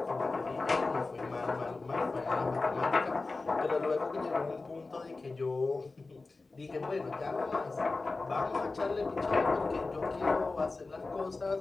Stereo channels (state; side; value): quieter; right; 3.6 dB